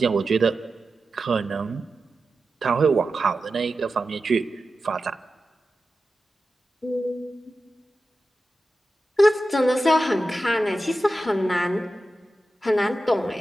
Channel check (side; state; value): both; normal; correlation 0.92